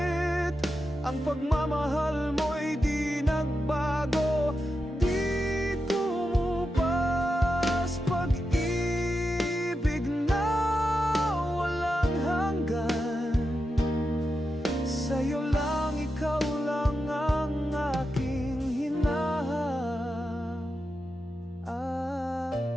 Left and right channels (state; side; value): normal; both; correlation 0.89